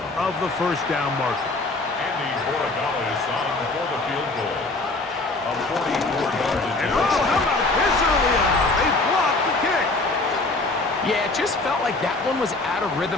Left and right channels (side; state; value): right; quieter; 3.2 dB